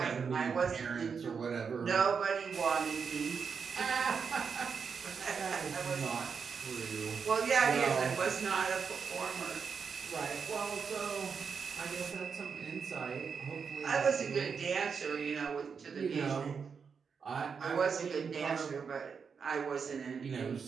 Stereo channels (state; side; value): quieter; left; 6.0 dB